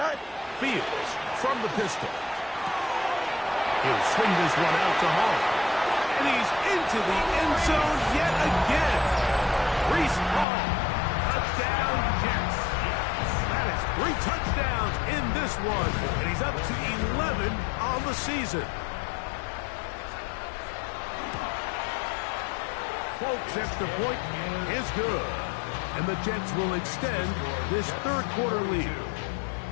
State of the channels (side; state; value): right; drops out; at 10.5 s